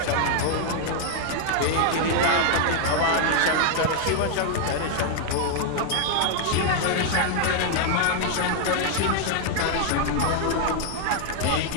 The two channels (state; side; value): different; both; correlation 0.00